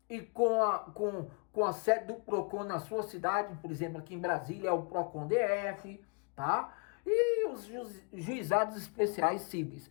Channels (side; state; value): right; quieter; 37.0 dB